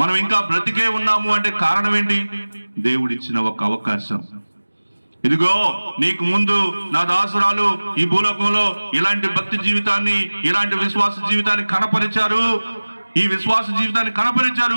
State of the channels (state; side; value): inverted; both; correlation -1.00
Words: ఇంకా బ్రతికే ఉన్నాము అంటే కారణం ఏంటి? దేవుడిచ్చిన ఒక అవకాశం. ఇదిగో నీకు ముందు నా దాసురాలు ఈ భూలోకంలో ఇలాంటి భక్తి జీవితాన్ని, ఇలాంటి విశ్వాస జీవితాన్ని కనపరిచారు, ఈ విశ్వాస జీవితాన్ని